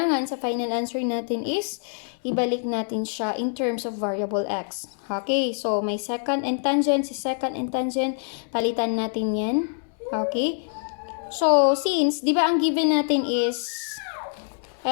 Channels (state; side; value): silent; right; digital silence